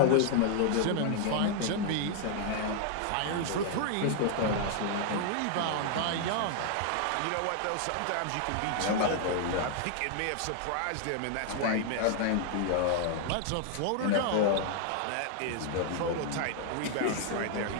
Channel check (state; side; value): different; both; correlation 0.00